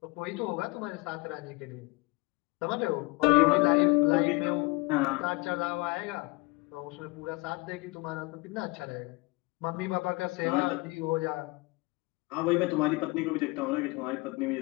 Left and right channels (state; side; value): quieter; right; 25.6 dB